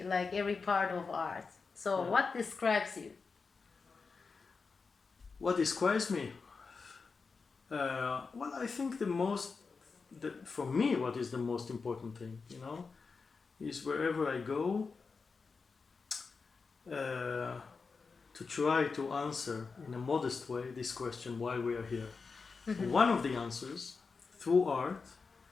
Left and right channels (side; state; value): right; quieter; 4.8 dB